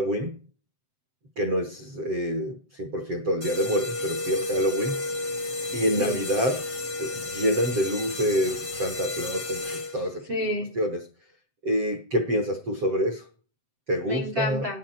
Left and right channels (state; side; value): late; left; 7.7 ms